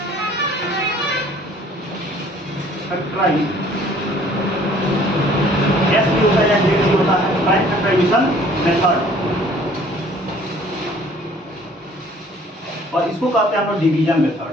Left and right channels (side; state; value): both; normal; correlation 0.55